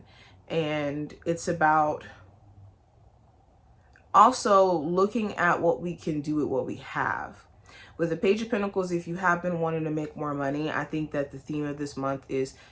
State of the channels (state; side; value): identical; both; correlation 1.00